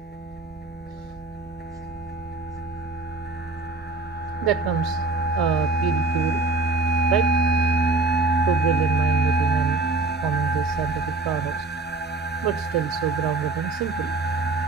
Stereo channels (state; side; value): quieter; left; 3.5 dB